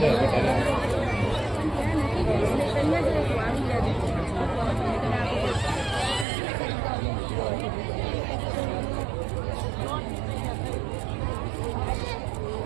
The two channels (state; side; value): drops out; left; at 6.2 s